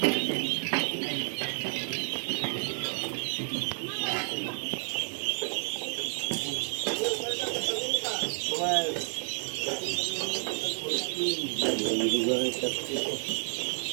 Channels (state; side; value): silent; left; digital silence